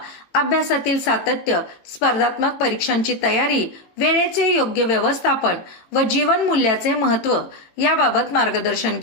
अभ्यासातील सातत्य, स्पर्धात्मक परीक्षांची तयारी, वेळेचे योग्य व्यवस्थापन व जीवन मूल्याचे महत्त्व याबाबत मार्गदर्शन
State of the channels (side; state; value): right; late; 18 ms